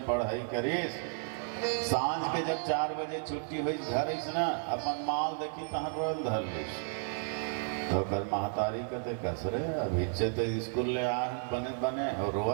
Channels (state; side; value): silent; left; 56 dB below the other